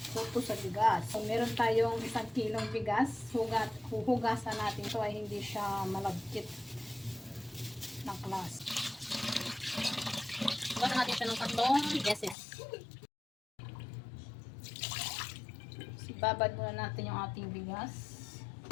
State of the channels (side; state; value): right; drops out; at 12.4 s